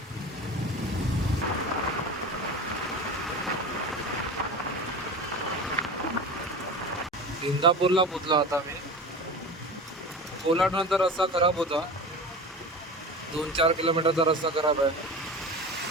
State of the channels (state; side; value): normal; both; correlation 0.31